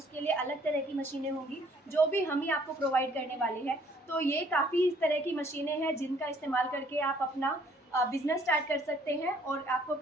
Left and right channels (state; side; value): normal; both; correlation 0.61